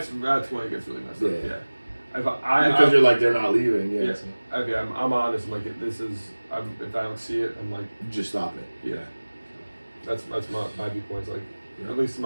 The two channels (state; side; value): inverted; both; correlation -1.00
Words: when it gets really messed up. Yeah. Because you're like, they're not leaving. Yeah. Yeah. So. Okay, I'm honest. I'm like, this is. If I don't see it, I'm like. Just stop it. Yeah. That's my viewpoint. Like, Yeah. at least in